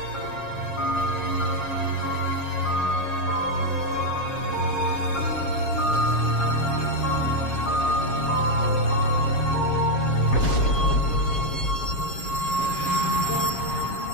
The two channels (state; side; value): late; right; 7.4 ms